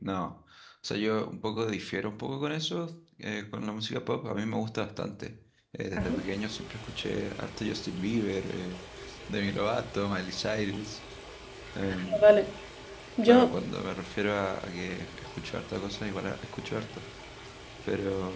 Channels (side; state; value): both; identical; correlation 1.00